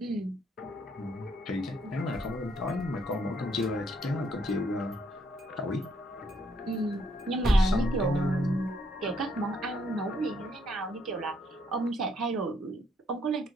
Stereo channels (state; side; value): normal; both; correlation 0.71